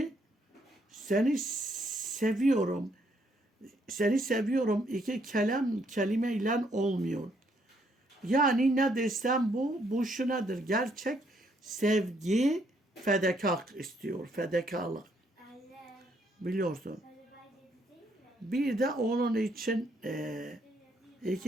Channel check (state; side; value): normal; both; correlation 0.71